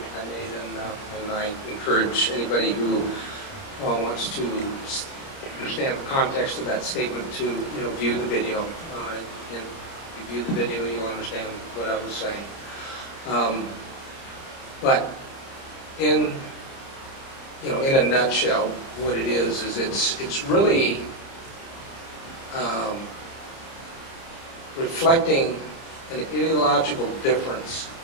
I made, and I encourage anybody who wants to understand the context of that statement to view the video. And if you view the video, you'll understand what I was saying. But in a nutshell, what it is it's really reflecting an ideological difference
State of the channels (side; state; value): right; late; 30 ms